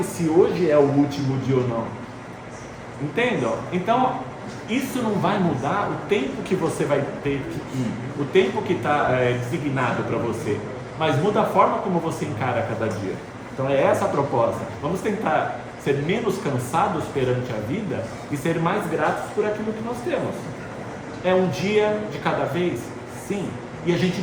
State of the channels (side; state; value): both; identical; correlation 1.00